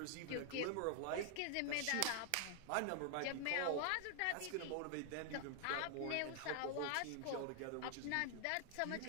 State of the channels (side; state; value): both; different; correlation 0.00